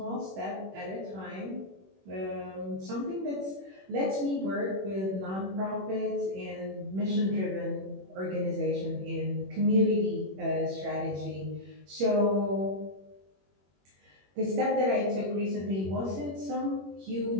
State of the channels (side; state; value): left; late; 21 ms